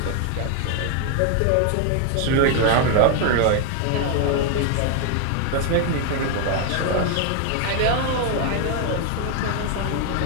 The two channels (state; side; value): different; both; correlation 0.00